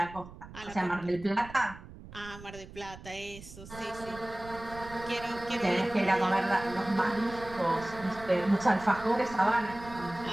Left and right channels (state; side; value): noise; right; rumble, 16 dB below the sound